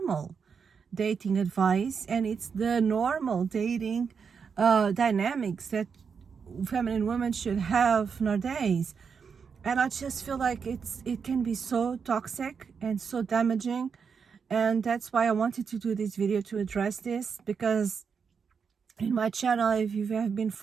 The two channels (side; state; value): left; quieter; 6.1 dB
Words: dating advice, and it's the normal dating dynamics that feminine women should have nowadays. And I just feel like it can be so toxic and so damaging. And that's why I wanted to do this video, to address this, because in my channel, if you have been